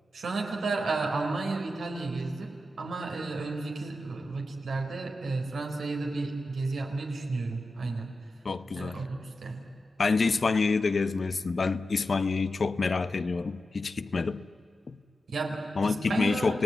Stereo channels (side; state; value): both; normal; correlation 0.91